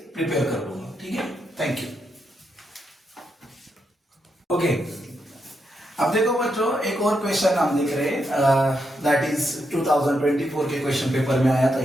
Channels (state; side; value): normal; both; correlation 0.82